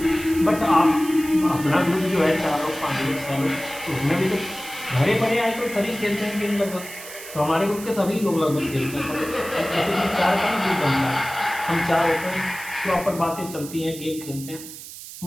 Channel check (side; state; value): right; noise; hiss, 13 dB below the sound